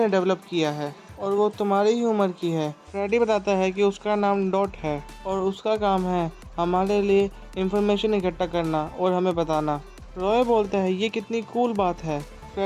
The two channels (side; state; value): both; identical; correlation 1.00